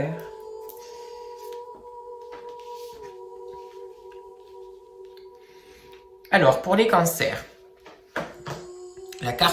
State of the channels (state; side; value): identical; both; correlation 1.00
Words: Alors, pour les cancers, la